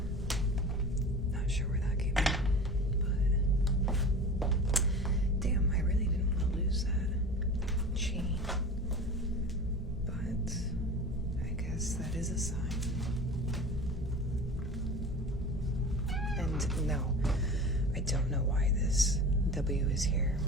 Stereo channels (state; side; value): normal; both; correlation 0.35